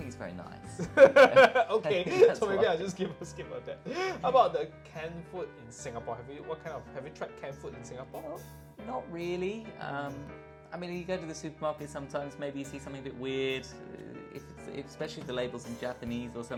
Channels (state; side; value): identical; both; correlation 1.00